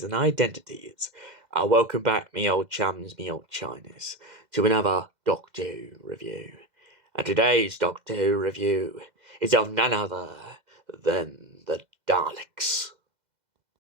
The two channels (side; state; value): left; late; 2.0 ms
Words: and identities. Welcome back, me old chums, me old chinas, to another Doctor Who review. And today's Doctor Who review is of none other than the Daleks.